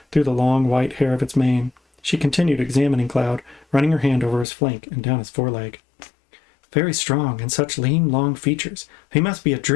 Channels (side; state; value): right; drops out; at 4.5 s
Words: through the long white hair of its mane. She continued examining Cloud, running her hand over his flank and down his foreleg. "Very strong, and such lean, long features. He must be a